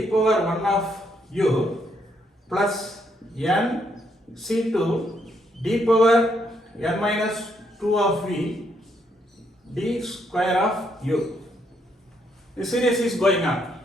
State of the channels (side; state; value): both; normal; correlation 0.74